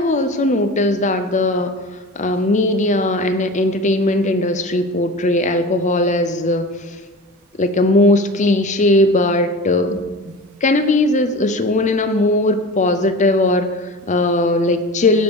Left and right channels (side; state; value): both; normal; correlation 0.34